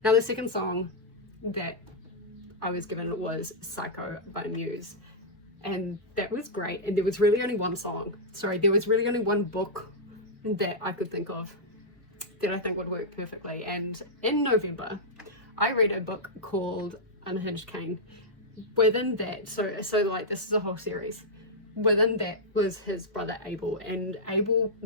Now the second song that I was given was Psycho by Muse, and that was great. And there was really only one book that I could think of that I think would work perfectly. And in November I read a book called Unhinged Cain. Within that, so like this is a whole series. Within that was his brother Abel, and Abel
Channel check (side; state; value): both; normal; correlation -0.08